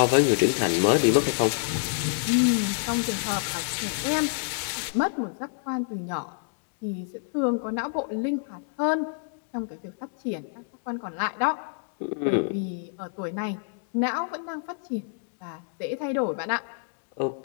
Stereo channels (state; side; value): silent; right; digital silence